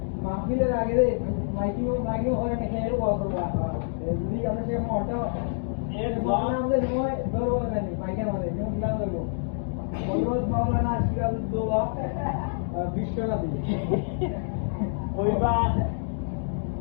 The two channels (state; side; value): silent; right; digital silence